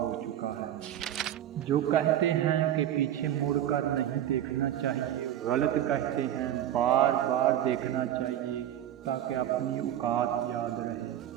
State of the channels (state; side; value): quieter; left; 11.4 dB